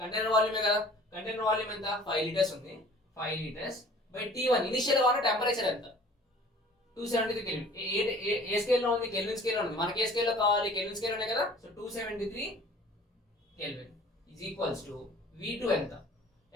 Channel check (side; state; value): both; normal; correlation 0.49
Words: కంటైనర్ వాల్యూమే కదా. కంటైనర్ వాల్యూమ్ ఎంత? 5 లీటర్స్ ఉంది. 5 లీటర్స్ బై T1 ఇనిషియల్ గా ఉన్న టెంపరేచర్ ఎంత? 273 కెల్విన్. ఏ స్కేల్లో ఉంది? కెల్విన్ స్కేల్లో ఉంది. మనకి ఏ స్కేల్లో కావాలి? కెల్విన్ స్కేల్లోనే కదా. So 273 kelvin is equals to V2 ఎంత?